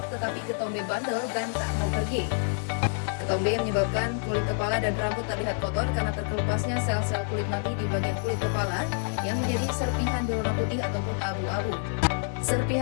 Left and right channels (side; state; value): right; silent; 59 dB below the other